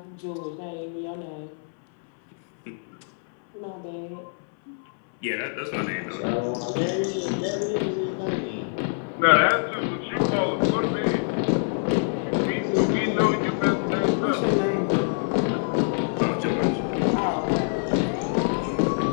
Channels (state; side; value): silent; right; 61 dB below the other